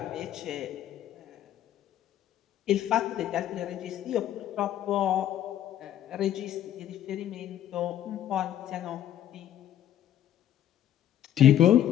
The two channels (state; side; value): quieter; right; 11.4 dB